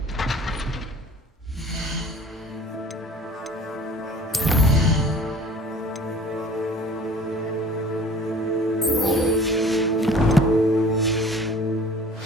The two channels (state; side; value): normal; both; correlation 0.47